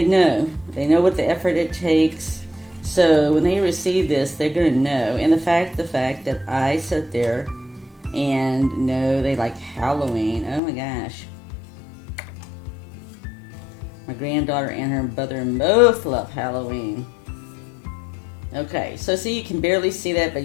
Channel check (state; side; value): drops out; right; at 10.6 s